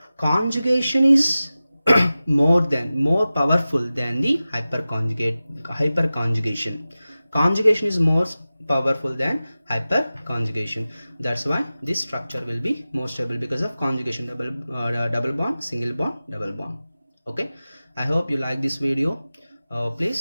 conjugation is more powerful than the hyperconjugation. Conjugation is more powerful than hyperconjugation. That's why this structure will be more stable because of conjugation, double bond, single bond, double bond. Okay, I hope you like this video.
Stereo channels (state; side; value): inverted; both; correlation -0.95